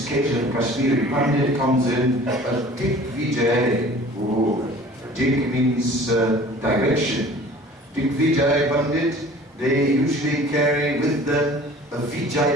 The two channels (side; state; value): both; normal; correlation 0.46